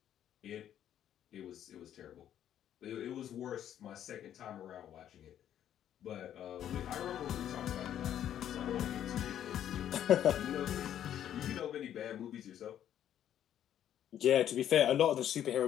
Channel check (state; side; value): quieter; right; 10.6 dB